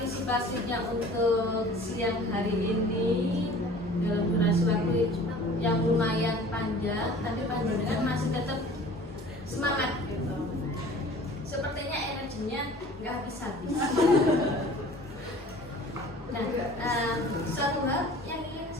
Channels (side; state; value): both; normal; correlation 0.46